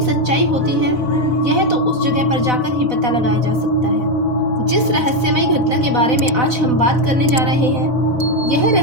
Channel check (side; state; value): left; late; 4.0 ms